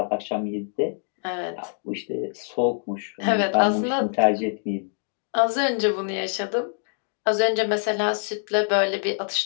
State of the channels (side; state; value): right; silent; 61 dB below the other